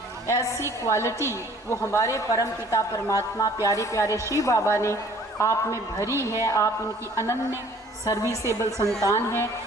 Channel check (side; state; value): both; normal; correlation 0.54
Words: ऐसी क्वालिटी वो हमारे परम पिता परमात्मा प्यारे प्यारे शिव बाबा ने आप में भरी है। आप उनकी अनन्य सर्विसेबल संतान हैं।